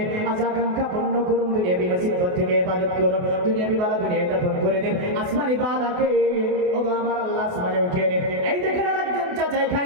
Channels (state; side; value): late; left; 28 ms